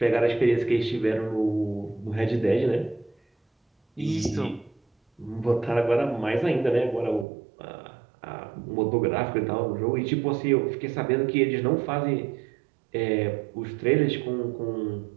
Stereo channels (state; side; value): drops out; left; at 7.2 s